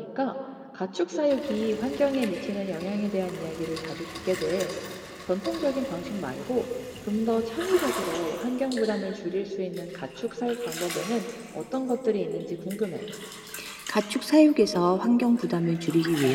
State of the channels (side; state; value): both; identical; correlation 1.00